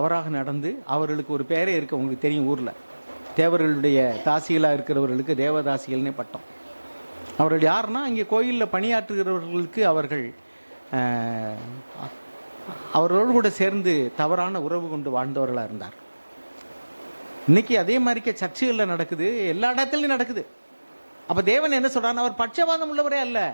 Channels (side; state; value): both; inverted; correlation -1.00